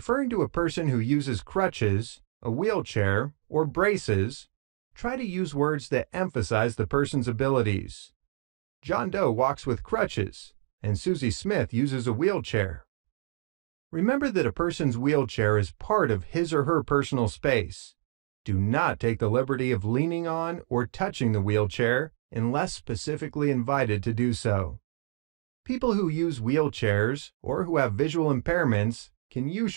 to a person who uses crutches, a wheelchair, or braces, try to use words that emphasize the person's abilities. John Doe walks with crutches, and Susie Smith uses a wheelchair. Remember that a person's wheelchair is part of his or her personal space. Do not take the liberty of leaning on or touching the wheelchair unless specifically invited to do so. People who use wheelchairs or who have visual impairments can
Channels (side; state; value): left; silent; digital silence